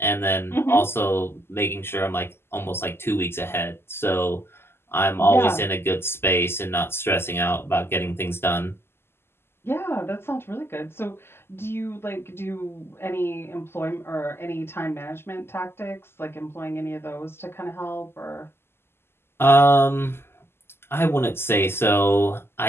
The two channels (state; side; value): late; right; 0.12 ms